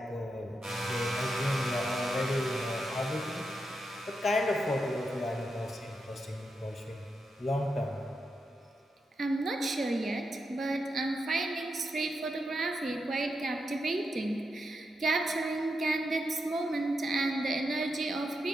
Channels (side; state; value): both; normal; correlation 0.85